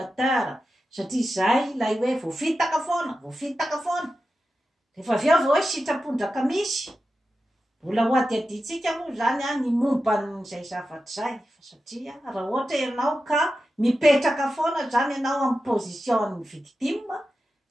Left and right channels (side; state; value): both; normal; correlation 0.91